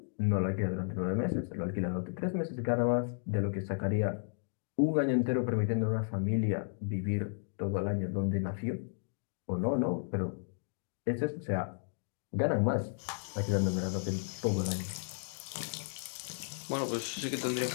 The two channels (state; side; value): silent; right; digital silence